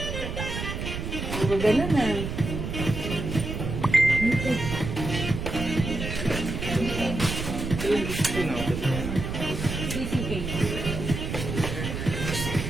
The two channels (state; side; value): noise; right; rumble, 4 dB below the sound